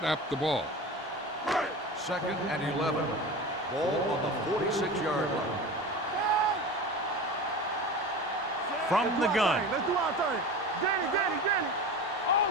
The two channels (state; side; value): normal; both; correlation 0.31